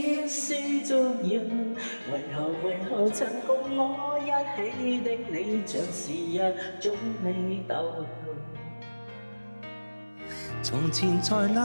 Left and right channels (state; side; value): inverted; both; correlation -1.00